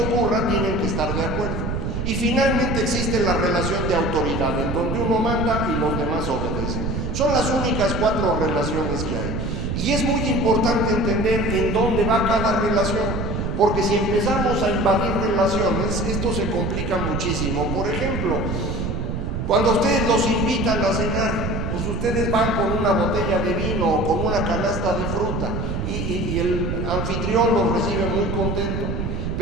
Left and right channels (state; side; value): noise; right; rumble, 2 dB below the sound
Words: tienen que estar de acuerdo. Y finalmente existe la relación de autoridad, en donde uno manda y los demás obedecen. Son las únicas 4 relaciones que hay. Y es muy importante entender en dónde va cada relación, porque si empezamos a invadir relaciones, esto se complica muchísimo. Por ejemplo, cuando ustedes los invitan a cenar, pues ustedes van con una botella de vino o con una canasta de fruta y el anfitrión los recibe muy contento.